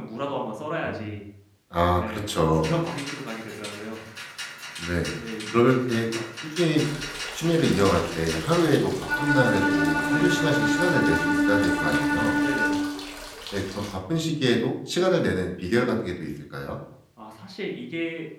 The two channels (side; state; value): both; identical; correlation 1.00